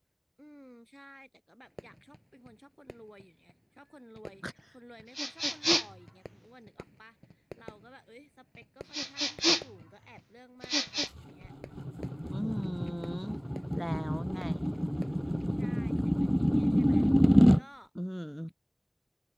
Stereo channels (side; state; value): both; identical; correlation 1.00